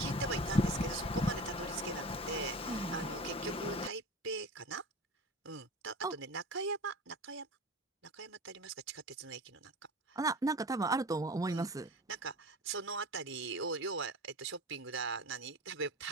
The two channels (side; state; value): both; normal; correlation 0.34